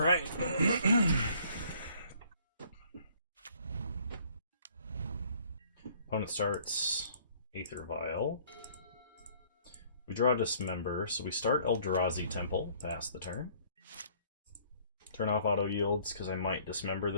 Opponent starts Aether Vial. We draw Dismember, so we start Eldrazi Temple, pass the turn. Turn off auto yields, because I might Dismember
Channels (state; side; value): inverted; both; correlation -0.59